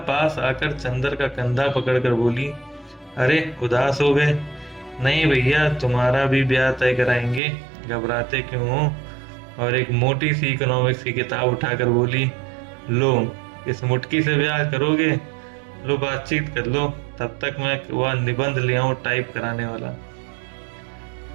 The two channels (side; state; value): left; drops out; at 7.4 s